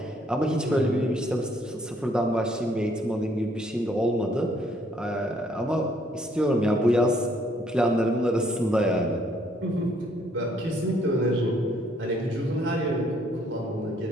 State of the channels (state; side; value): normal; both; correlation 0.66